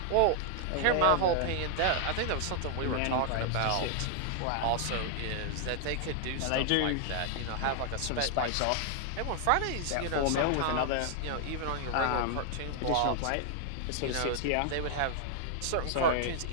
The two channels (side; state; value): both; different; correlation 0.00